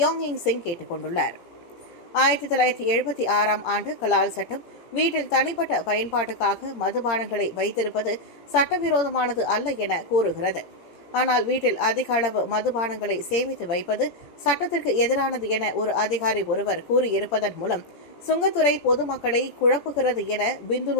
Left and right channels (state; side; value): late; right; 17 ms